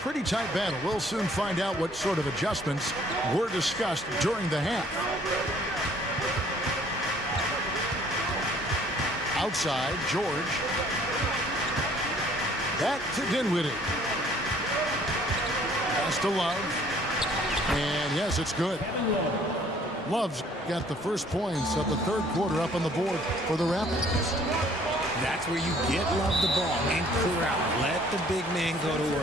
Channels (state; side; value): normal; both; correlation 0.58